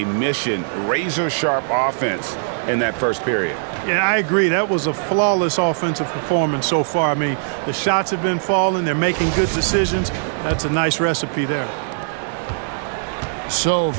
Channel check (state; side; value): silent; left; 66 dB below the other